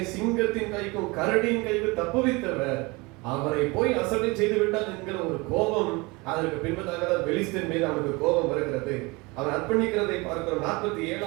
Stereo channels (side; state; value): left; quieter; 25.4 dB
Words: சிங்கத்தின் கைக்கும் கரடியின் கைக்கும் தப்புவித்தவர், அவரை போய் அசட்டை செய்து விட்டான் என்கிற ஒரு கோபம். அதற்கு பின்பதாக பெலிஸ்தீன் மீது அவனுக்கு கோபம் வருகிறது. அவன் அர்ப்பணிக்கிறதை பார்க்கிறோம்.